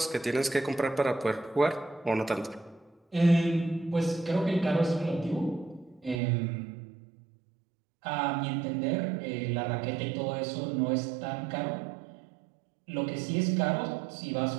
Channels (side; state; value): left; drops out; at 6.2 s